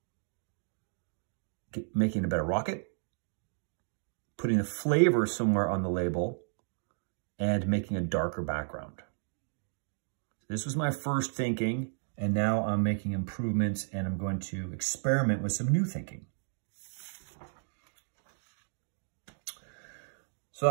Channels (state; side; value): silent; left; digital silence